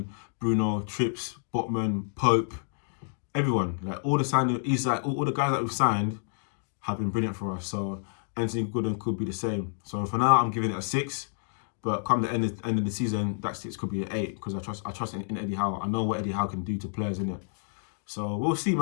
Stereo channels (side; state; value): right; silent; 59 dB below the other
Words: Bruno, Trips, Botman, Pope, everyone, like all the signings, Isak, all the guys that we've signed have been brilliant for us. So Anthony Gordon could be the same. So for now, I'm giving it a 6. But come the end of the season, that 6 could be an 8 because I trust in Eddie Howe. I know what Eddie Howe can do to players, innit? So we'll see,